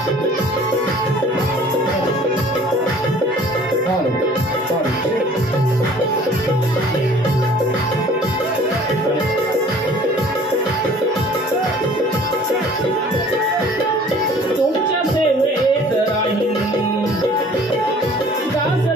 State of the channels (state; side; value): normal; both; correlation 0.51